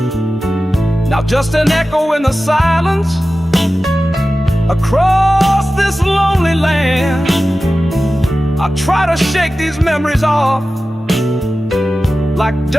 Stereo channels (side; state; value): both; normal; correlation 0.95